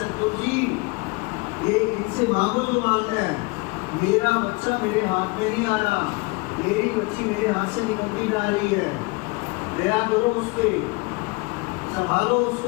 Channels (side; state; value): right; quieter; 27.2 dB